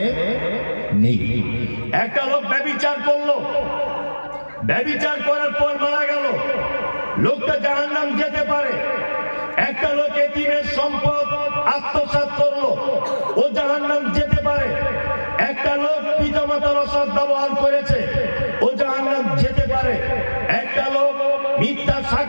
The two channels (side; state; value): both; inverted; correlation -1.00